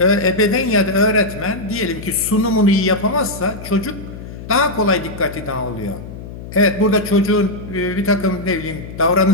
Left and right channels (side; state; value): left; noise; hum, 12 dB below the sound